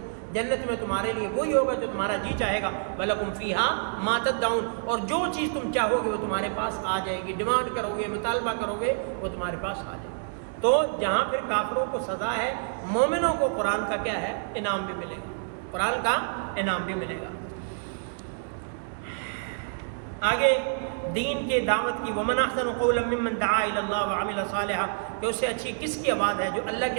جنت میں تمہارے لیے وہی ہوگا جو تمہارا جی چاہے گا۔ وَلَكُمْ فِيهَا مَا تَدَّعُونَ، اور جو چیز تم چاہو گے وہ تمہارے پاس آ جائے گی، ڈیمانڈ کرو گے، مطالبہ کرو گے، وہ تمہارے پاس آ جائے گی۔ تو جہاں پھر کافروں کو سزا ہے، مومنوں کو قرآن کا کیا ہے، انعام بھی ملے گا، قرآن کا انعام بھی ملے گا۔ آگے دین کے دعوت کی، وَمَنْ أَحْسَنُ قَوْلًا مِّمَّنْ دَعَا إِلَى اللَّهِ وَعَمِلَ صَالِحًا، کہ اس سے اچھی کس کی آواز ہے جو اللہ کی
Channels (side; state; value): left; silent; digital silence